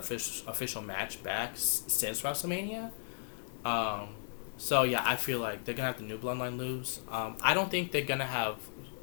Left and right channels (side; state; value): right; silent; 54 dB below the other